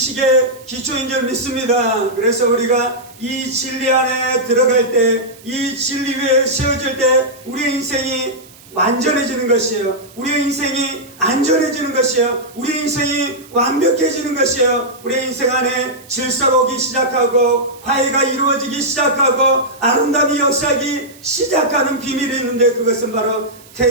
기초인 줄 믿습니다. 그래서 우리가 이 진리 안에 들어갈 때, 이 진리 위에 세워질 때 우리의 인생이 완전해지는 것이에요. 우리의 인생이 안전해지는 것이에요. 우리의 인생이 완벽해지는 것이에요. 우리의 인생 안에 질서가 오기 시작하고 화해가 이루어지기 시작하고 아름다움이 역사하기 시작하는 비밀이 있는데 그것은 바로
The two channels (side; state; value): right; noise; hiss, 23 dB below the sound